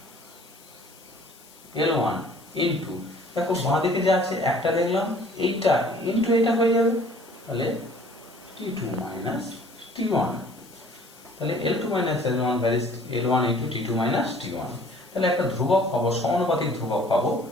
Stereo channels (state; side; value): noise; left; hiss, 24 dB below the sound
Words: L1 into, দেখো বাঁ দিকে যা আছে একটা দেখলাম, এইটা ইন্টু এটা হয়ে যাবে, তাহলে T2 মাইনাস T1, তাহলে L2 minus L1 varies L1 into T2 minus T1। তাহলে একটা ধ্রুবক পাবো, সমানুপাতিক ধ্রুবক পাবো,